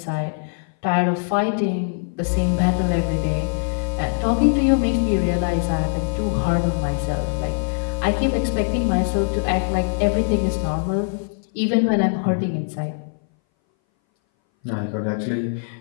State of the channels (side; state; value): right; silent; 60 dB below the other